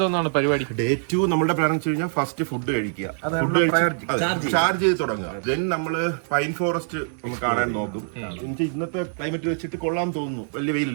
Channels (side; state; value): left; silent; digital silence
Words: പരിപാടി? ഡേ 2 നമ്മുടെ പ്ലാൻ വെച്ച് കഴിഞ്ഞാൽ ഫസ്റ്റ് ഫുഡ് കഴിക്കുക, ചാർജ് ചെയ്ത് തുടങ്ങുക. ദെൻ നമ്മള് പൈൻ ഫോറസ്റ്റ് ഒന്ന് കാണാൻ നോക്കും. എനിക്ക് ഇന്നത്തെ ക്ലൈമറ്റ് വെച്ചിട്ട് കൊള്ളാൻ തോന്നുന്നു, വലിയ